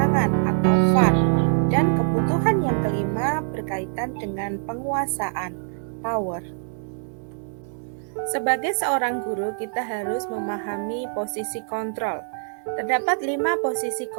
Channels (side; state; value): left; silent; digital silence